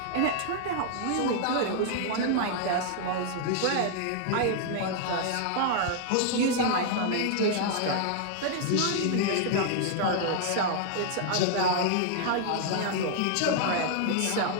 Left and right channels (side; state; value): both; different; correlation 0.00